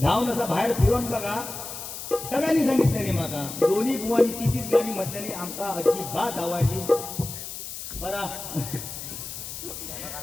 धावून असा बाहेर फिरून बघा सगळ्यांनी सांगितलं माका दोन्ही बुवानी तीच गाणी म्हटल्याने आमका अजिबात आवडली बरा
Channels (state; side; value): noise; left; hiss, 9 dB below the sound